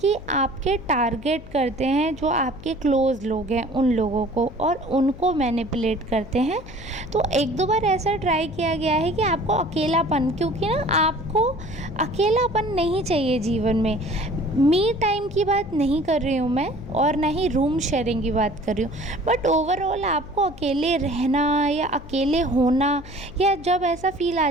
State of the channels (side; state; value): left; noise; hum, 17 dB below the sound